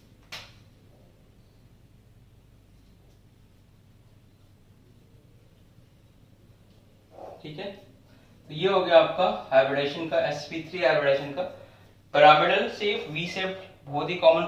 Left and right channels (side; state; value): both; identical; correlation 1.00